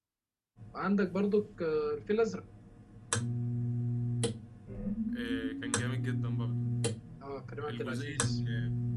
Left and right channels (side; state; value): both; identical; correlation 1.00